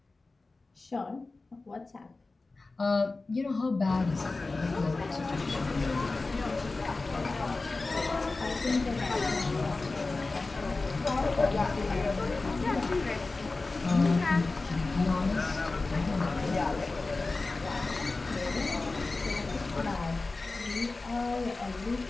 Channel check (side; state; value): right; quieter; 3.5 dB